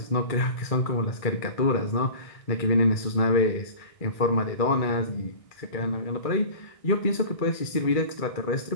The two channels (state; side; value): late; right; 1.6 ms